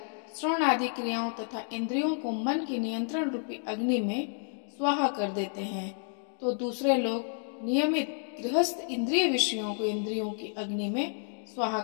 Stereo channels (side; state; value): right; silent; 57 dB below the other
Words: श्रवण आदि क्रियाओं तथा इंद्रियों को मन के नियंत्रण रूपी अग्नि में स्वाहा कर देते हैं, तो दूसरे लोग नियमित गृहस्थ इंद्रिय विषयों को इंद्रियों की अग्नि में स्वाहा